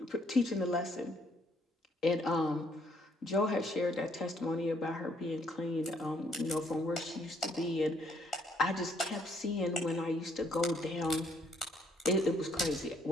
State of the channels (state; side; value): normal; both; correlation 0.68